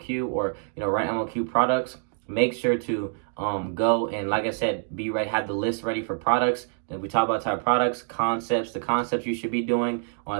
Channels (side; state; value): left; silent; digital silence